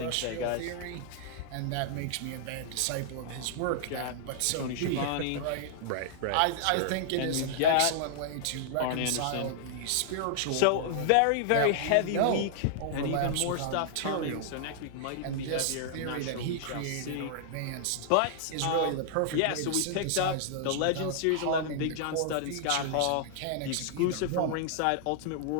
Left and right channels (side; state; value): both; different; correlation -0.01